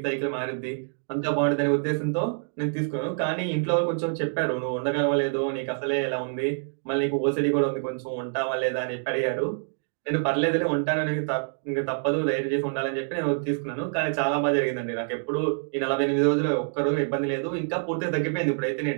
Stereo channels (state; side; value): silent; left; digital silence